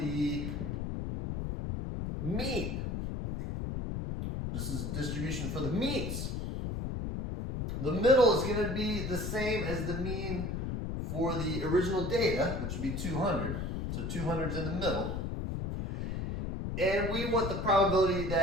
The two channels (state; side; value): noise; left; rumble, 3 dB below the sound